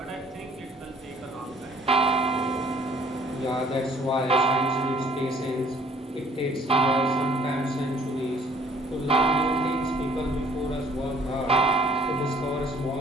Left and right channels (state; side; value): normal; both; correlation 0.58